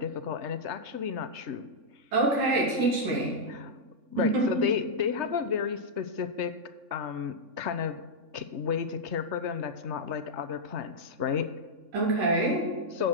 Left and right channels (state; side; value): late; left; 3.6 ms